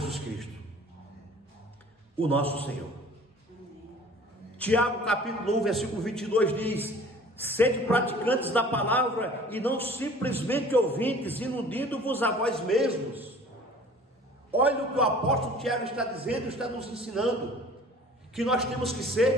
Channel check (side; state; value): both; normal; correlation 0.47